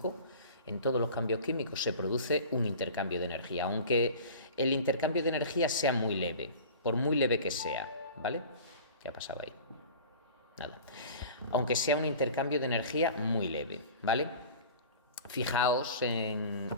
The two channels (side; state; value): both; inverted; correlation -0.39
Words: en todos los cambios químicos se produce un intercambio de energía, aunque el intercambio de energía sea muy leve, por muy leve que sea, ¿vale? ¿Qué ha pasado ahí? Nada. Aunque sea un intercambio de energía muy leve, ¿vale? Fijaos en